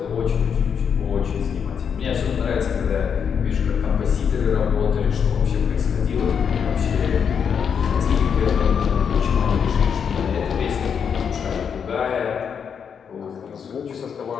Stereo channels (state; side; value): quieter; right; 7.1 dB